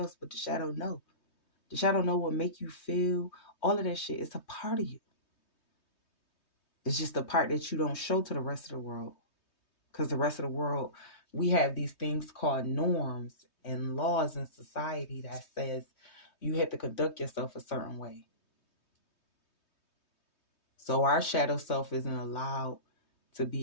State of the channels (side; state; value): right; late; 3.2 ms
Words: but the shadow know. The shadow know what make you feel. All of that shit. It's a part of you. It's just the part that you don't show to the rest of the world. Because the rest of the world, we have these things called norms and laws in society that says you have to conduct yourself a certain way. So our shadow self isn't allowed to